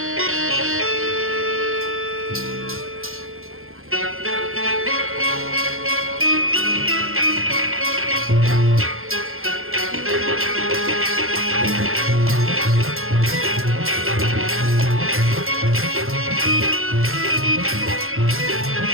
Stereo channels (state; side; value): late; left; 0.61 ms